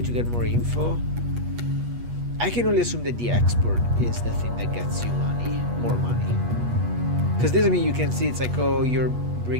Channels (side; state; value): left; late; 8.3 ms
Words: to get more info. I can only assume that the export is the thing that gets you money, more money. Because this, I mean, you can see it's like, oh, you're